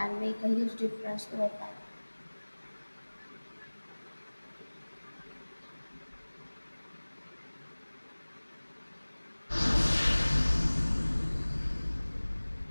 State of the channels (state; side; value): inverted; both; correlation -1.00